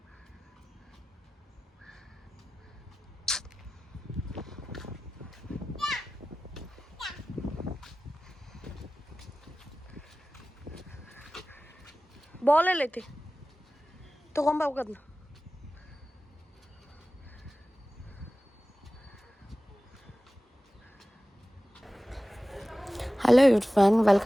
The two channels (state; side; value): normal; both; correlation 0.96